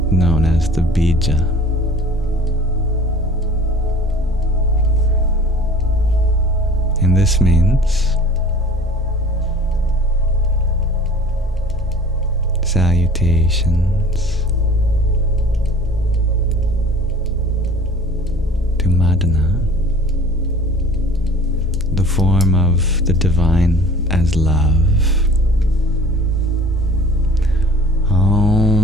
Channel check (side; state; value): both; normal; correlation 0.46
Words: known as the bija. And this means salutations to Madana, the form of the divine as love.